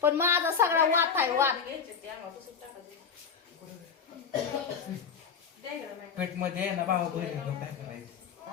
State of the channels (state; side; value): quieter; right; 6.4 dB